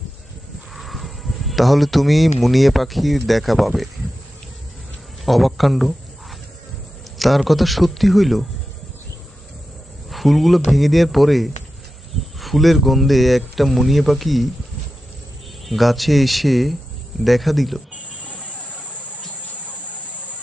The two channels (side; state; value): both; normal; correlation 0.92